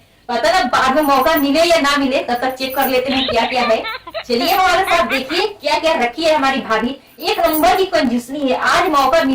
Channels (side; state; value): both; identical; correlation 1.00